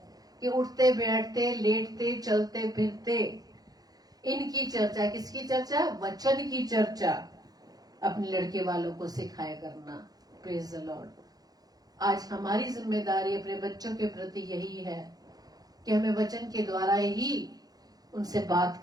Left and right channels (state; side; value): late; left; 0.19 ms